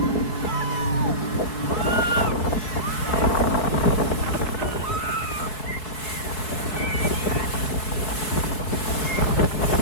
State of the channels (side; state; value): right; late; 4.7 ms